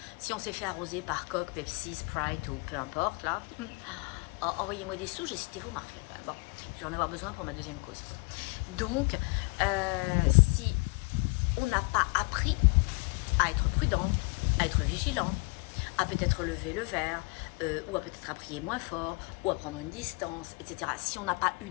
si on s'est fait arroser par Coke, Pepsi, Sprite ou peu importe, là, envoyez-moi des sous, j'ai cité vos marques. Bon, je vais en avoir besoin pour ma deuxième cause. Donc, si on n'a pas appris à être prudent, à être vigilant, à peut-être lever le verre, ou à peut-être à prier moins fort, ou à prendre une distance, etc. Si on n'a pas eu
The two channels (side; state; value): right; quieter; 30.0 dB